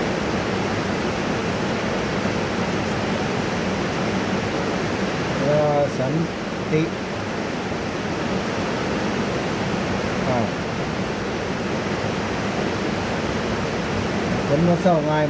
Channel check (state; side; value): identical; both; correlation 1.00